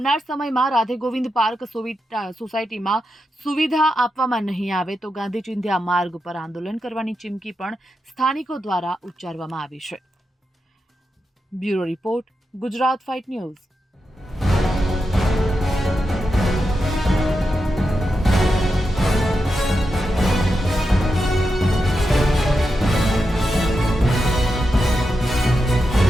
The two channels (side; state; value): both; normal; correlation 0.88